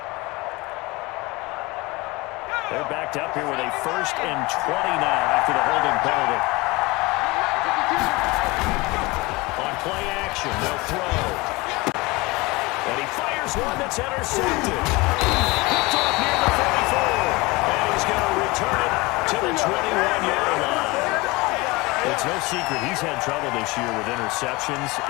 They're backed up here with a 1st and 20 now after the holding penalty. Play action, they'll throw. And he fires one that's intercepted. Picked off near the 44. And he's going to return it to the 21-yard line. It's no secret he's had trouble this year with interceptions,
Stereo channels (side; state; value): right; quieter; 23.4 dB